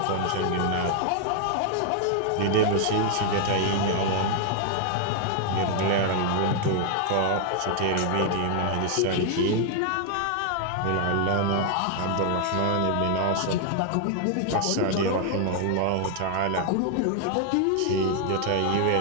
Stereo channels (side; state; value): both; different; correlation 0.00